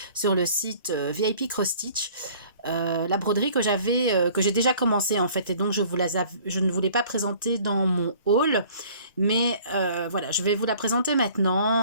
sur le site VIP Cross Stitch. La broderie que j'ai déjà commencé en fait, et donc je ne voulais pas présenter dans mon haul, mais voilà, je vais vous la présenter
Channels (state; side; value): inverted; both; correlation -0.52